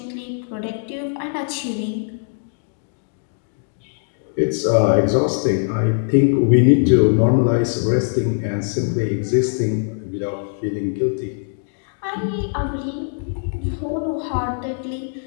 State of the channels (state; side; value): silent; right; digital silence